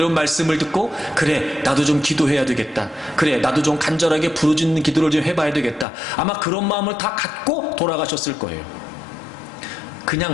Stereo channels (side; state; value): right; drops out; at 5.9 s